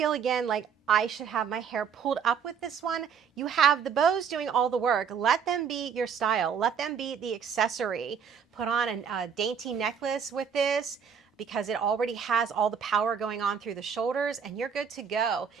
again, like I should have my hair pulled up with this one. You have the bows doing all the work. Let them be your style. Let them be the accessory. Put on a dainty necklace with this, because it already has all the power going on through the shoulders, and you're good to go.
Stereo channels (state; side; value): quieter; left; 7.0 dB